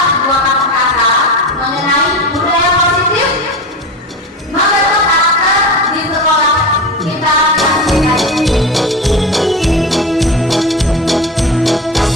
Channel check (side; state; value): both; normal; correlation 0.26